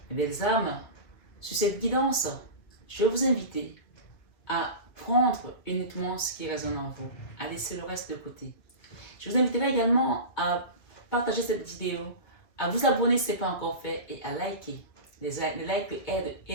Mes belles âmes, sur cette guidance, je vais vous inviter à prendre uniquement ce qui résonne en vous, à laisser le reste de côté. Je vous inviterai également à partager cette vidéo, à vous abonner si ce n'est pas encore fait et à liker. Les likes aident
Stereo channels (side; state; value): right; late; 2.5 ms